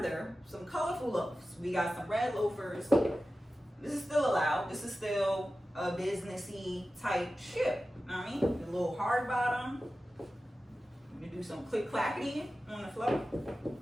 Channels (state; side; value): normal; both; correlation 0.94